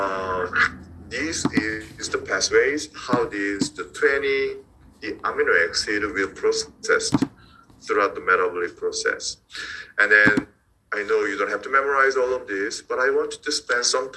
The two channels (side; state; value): both; identical; correlation 1.00